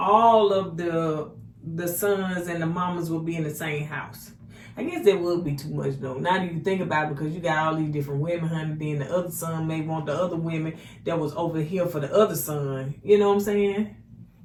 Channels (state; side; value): identical; both; correlation 1.00